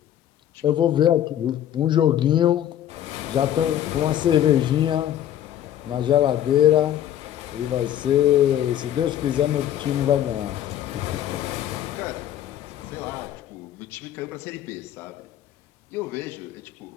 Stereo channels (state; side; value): quieter; right; 11.2 dB